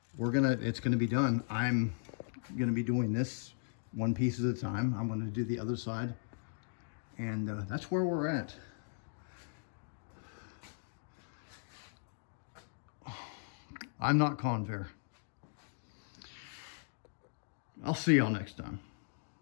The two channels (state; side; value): silent; right; digital silence